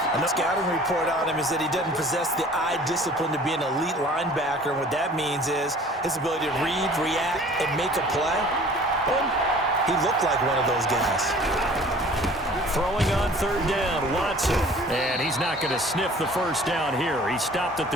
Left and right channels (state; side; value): normal; both; correlation 0.48